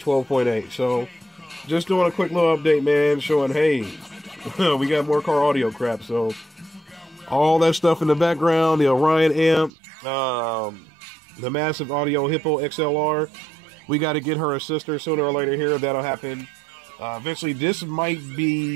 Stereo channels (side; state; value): left; drops out; at 9.7 s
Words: So just doing a quick little update, man, showing, hey, we got more car audio crap. So all that stuff in the background, the Orion amp, the massive audio Hippo XLR. We got to get her a sister sooner or later here. That'll happen. Eventually, this might